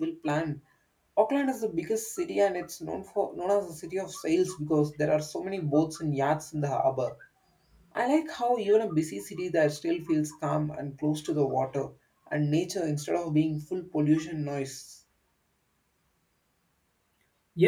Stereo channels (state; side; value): identical; both; correlation 1.00